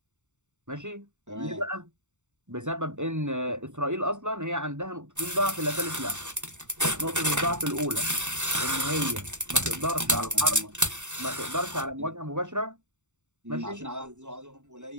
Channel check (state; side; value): late; left; 0.84 ms